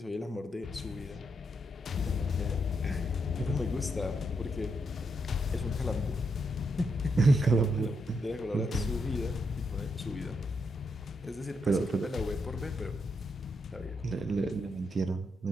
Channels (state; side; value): normal; both; correlation 0.80